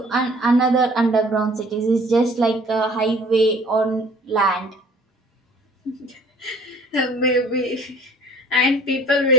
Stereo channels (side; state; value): both; normal; correlation 0.53